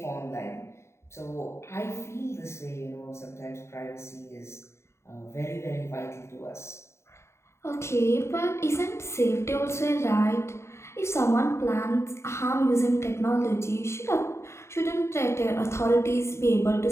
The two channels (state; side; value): late; right; 0.13 ms